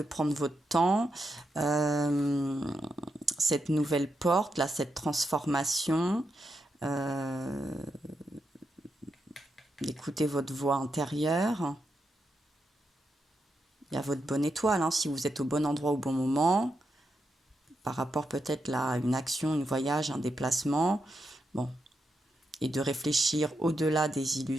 prendre votre temps, cette nouvelle porte, là, cette transformation, d'écouter votre voix intérieure. Il y a votre bonne étoile, hein, si vous êtes au bon endroit au bon moment, par rapport peut-être à une action, un voyage, un déplacement. Bon. Et de réfléchir au-delà des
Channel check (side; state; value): both; normal; correlation 0.84